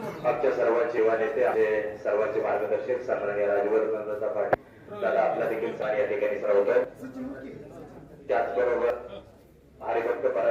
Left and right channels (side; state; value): both; identical; correlation 1.00